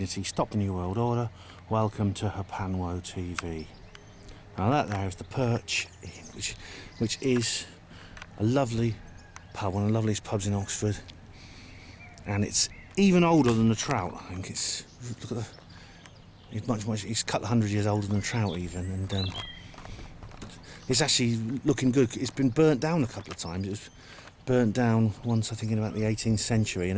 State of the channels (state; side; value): identical; both; correlation 1.00